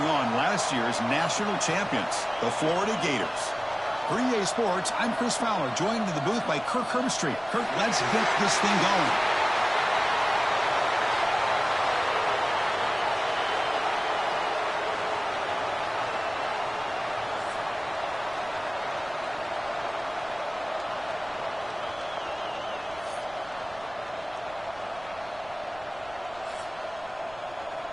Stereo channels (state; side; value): noise; right; rumble, 23 dB below the sound